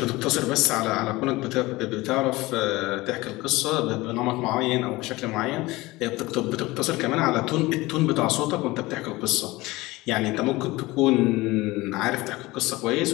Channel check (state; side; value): quieter; right; 20.5 dB